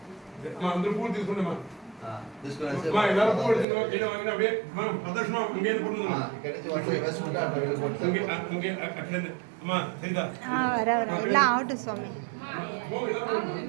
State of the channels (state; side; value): drops out; left; at 3.7 s